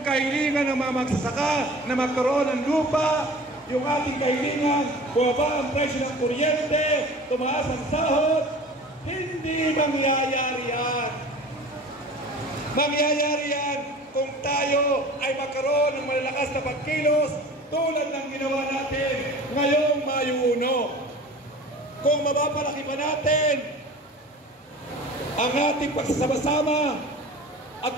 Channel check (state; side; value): normal; both; correlation 0.41